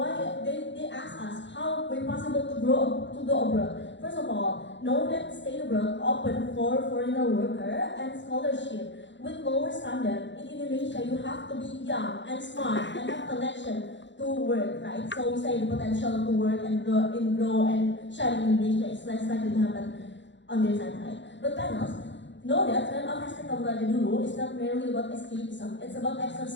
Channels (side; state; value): right; late; 0.53 ms